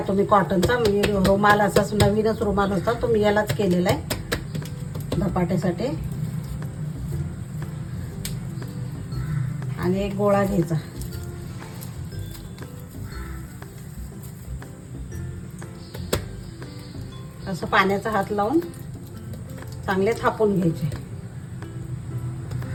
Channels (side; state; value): both; identical; correlation 1.00